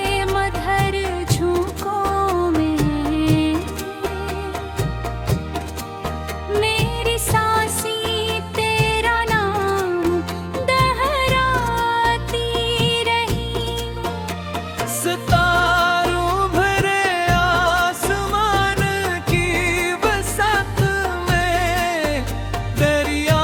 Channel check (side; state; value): both; identical; correlation 1.00